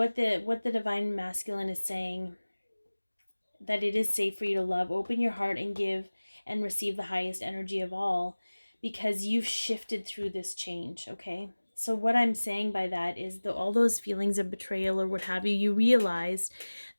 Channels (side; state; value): both; inverted; correlation -1.00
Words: the Divine Masculine is saying, that it is safe for you to love. Open your heart and give and receive the highest energy of all, because you've shifted through this change, okay? So what I'm saying by that is all those feelings of betrayal or what have you, you realized